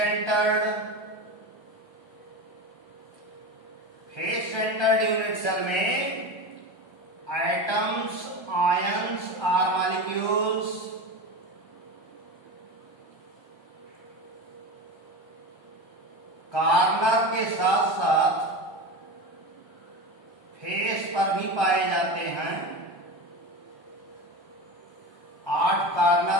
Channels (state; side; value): late; right; 1.3 ms